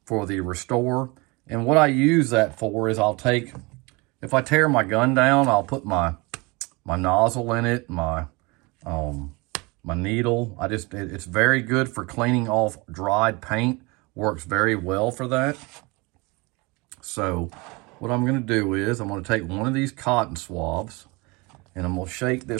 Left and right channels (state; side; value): quieter; left; 26.3 dB